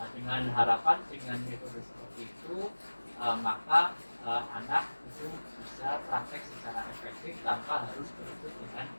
Dengan harapan dengan metode seperti itu maka anak itu bisa praktek secara efektif tanpa harus berebut dengan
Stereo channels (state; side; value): inverted; both; correlation -1.00